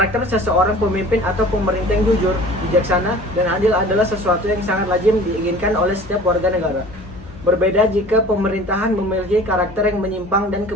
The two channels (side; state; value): left; noise; hum, 22 dB below the sound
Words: seseorang pemimpin atau pemerintah yang jujur, bijaksana, dan adil adalah sesuatu yang sangat lazim diinginkan oleh setiap warga negara. Berbeda jika pemerintahan memiliki karakter yang menyimpang dan